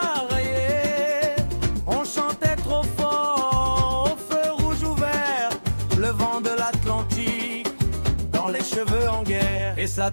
On chantait trop fort, au feu rouge ouvert, le vent de l'Atlantique dans les cheveux en guerre. Et ça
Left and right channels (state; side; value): inverted; both; correlation -1.00